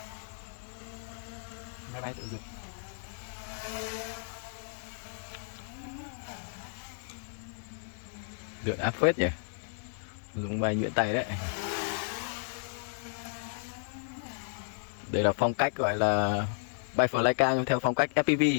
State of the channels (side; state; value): right; silent; digital silence